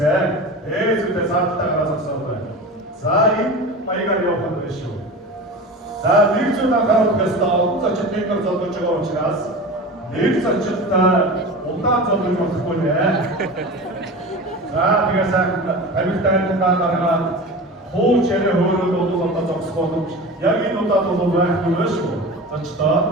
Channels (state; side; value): normal; both; correlation 0.31